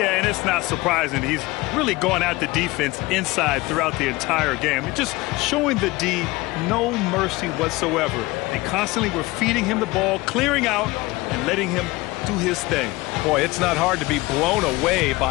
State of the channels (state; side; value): quieter; right; 21.2 dB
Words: and it's not surprising. He's really going at the defense inside throughout the entire game. And just showing the D no mercy whatsoever. They constantly were feeding him the ball, clearing out, and letting him do his thing. Boy, it's not hard to be blown away